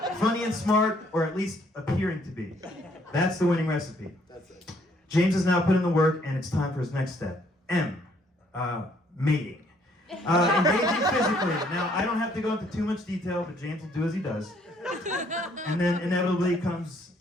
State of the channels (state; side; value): normal; both; correlation 0.66